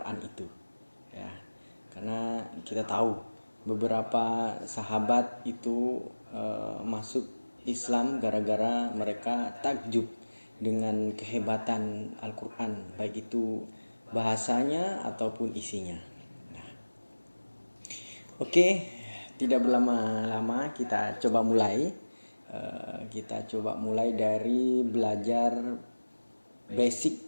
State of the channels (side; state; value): both; inverted; correlation -1.00